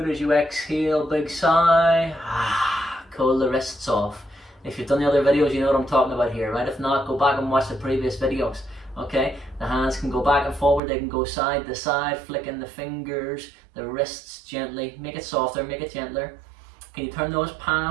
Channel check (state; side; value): drops out; left; at 10.8 s